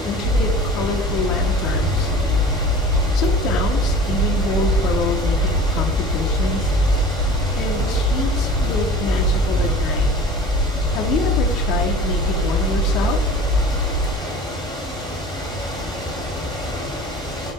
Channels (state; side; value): normal; both; correlation 0.42